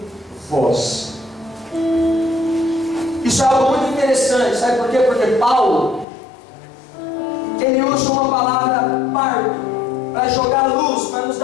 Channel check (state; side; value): drops out; right; at 6.1 s